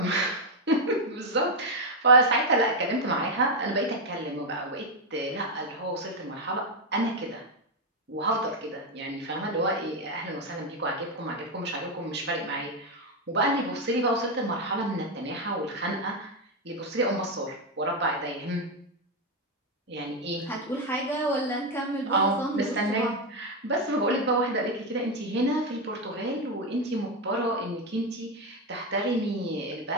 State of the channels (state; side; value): normal; both; correlation 0.06